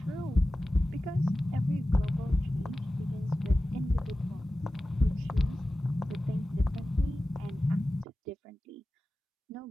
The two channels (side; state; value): both; normal; correlation 0.95